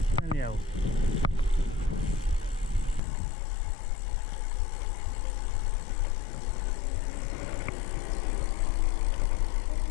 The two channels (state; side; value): drops out; right; at 3.0 s